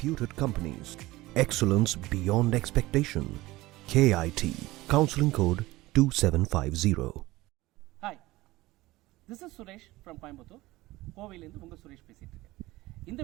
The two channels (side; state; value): left; quieter; 18.8 dB